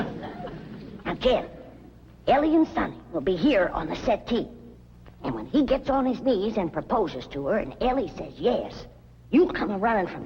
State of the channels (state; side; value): identical; both; correlation 1.00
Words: Now, Jen, Elly and Sonny will be here on the settee. And when he gets on his knees and proposes to her, and Elly says yes, you come a-running from